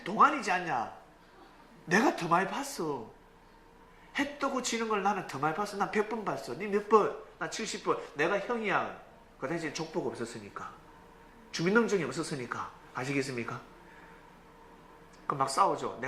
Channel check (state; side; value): identical; both; correlation 1.00